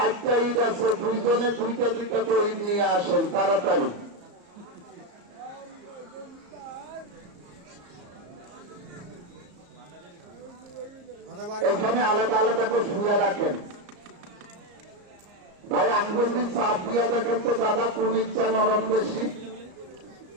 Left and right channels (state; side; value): late; left; 34 ms